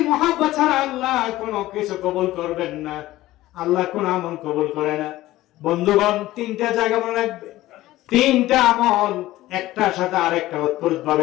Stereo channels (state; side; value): quieter; right; 16.3 dB